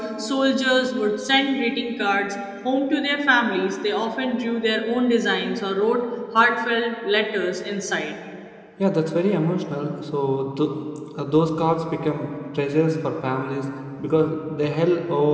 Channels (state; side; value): identical; both; correlation 1.00